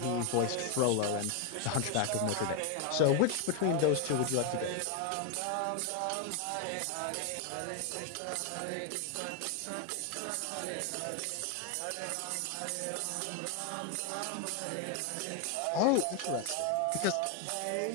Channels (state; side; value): different; both; correlation 0.01